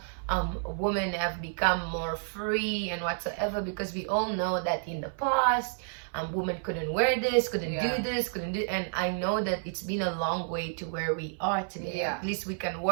women have become more free and whatsoever, because we all know that in the past, women couldn't wear this, couldn't do this, and I know that it's been a long way to where we are today. At least we can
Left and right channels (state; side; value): silent; left; 58 dB below the other